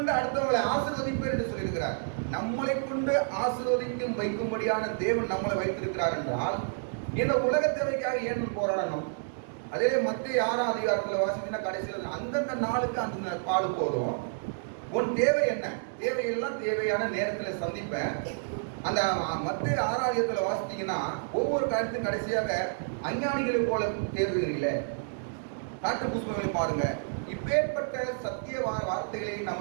அடுத்தவங்களை ஆசீர்வதிப்பேர் என்று சொல்லியிருக்கிறார். நம்மளை கொண்டு ஆசீர்வதிக்கும் வைக்கும்படியான தேவன் நம்மளை வைத்திருக்கிறார் என்றால் இந்த உலக தேவைக்காக ஏன் போராடணும்? அதே மத்திய 6ஆம் அதிகாரத்தில் வாசிக்கிற கடைசியில் அந்தந்த நாளுக்கு அந்த பாடு போதும். உன் தேவை என்ன, தேவையெல்லாம் தேவையான நேரத்தில் சந்திப்பேன். அந்த மத்திய 6ஆம் அதிகாரத்தில் வாசித்தீங்கன்னா ஒவ்வொரு காரியத்துக்கும் கடைசியாக அஞ்ஞானிகளை போல தேர்வுகிறீங்களே, காட்டு புஷ்பங்களை பாருங்க. இப்பேற்பட்ட சத்திய வார்த்தைகளை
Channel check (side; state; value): left; silent; digital silence